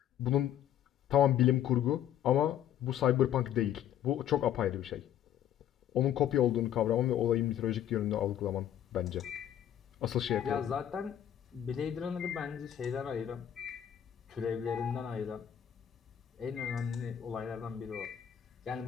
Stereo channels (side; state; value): right; quieter; 10.4 dB